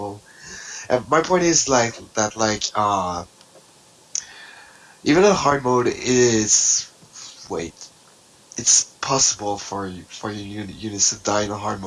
And my point is even in hard mode is... Wait. it's possible for your units to die in a hard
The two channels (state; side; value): identical; both; correlation 1.00